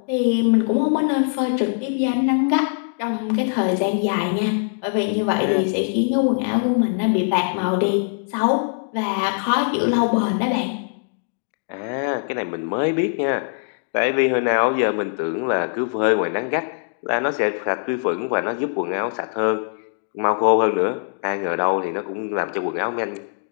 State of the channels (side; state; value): right; silent; digital silence